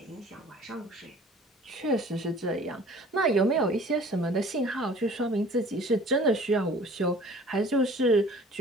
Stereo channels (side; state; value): both; normal; correlation 0.49